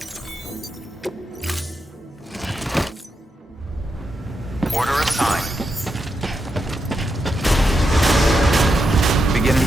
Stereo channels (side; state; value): both; normal; correlation 0.85